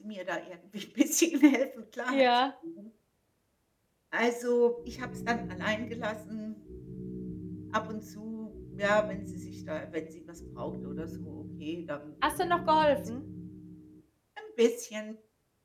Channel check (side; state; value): both; identical; correlation 1.00